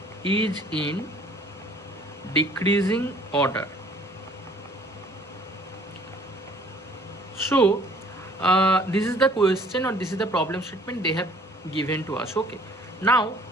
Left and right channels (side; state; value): both; normal; correlation 0.55